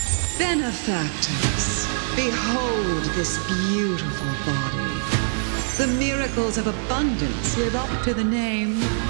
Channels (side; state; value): left; silent; digital silence